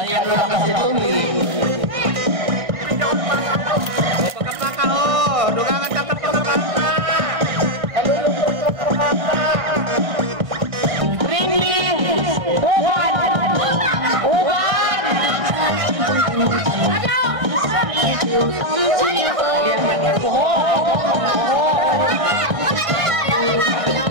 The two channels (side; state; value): left; late; 1.6 ms